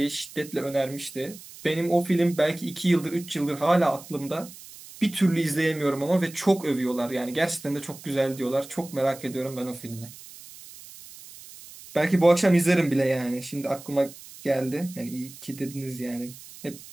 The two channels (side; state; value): right; noise; hiss, 17 dB below the sound